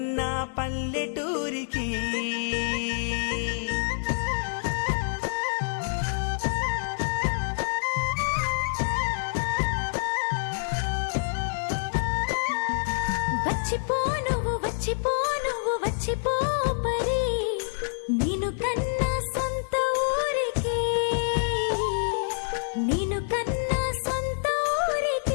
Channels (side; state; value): right; silent; digital silence